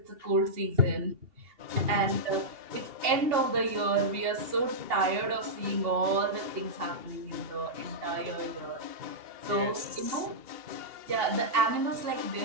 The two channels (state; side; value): late; left; 2.8 ms